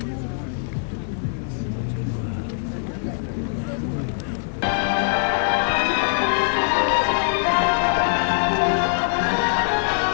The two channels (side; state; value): right; silent; 60 dB below the other